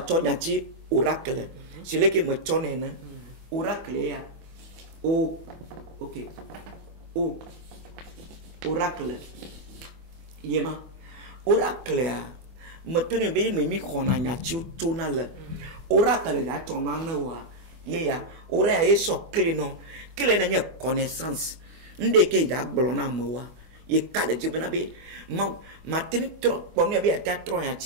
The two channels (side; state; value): left; late; 25 ms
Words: ya ti oracle. C'est le qui me tonne oracle ya. Oh, ok. Oh, oracle. Yema. Oracle ya. Maintenant be me mi kona nya ti tona le oracle da tona na wa ye ya ora ya so clé non clé na nya connaissance nde ke ja gbolo na mo wa ye ka de jibna be ma tin trop pour me be ta trop ya